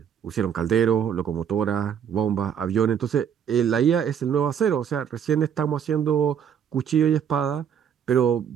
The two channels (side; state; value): left; quieter; 8.2 dB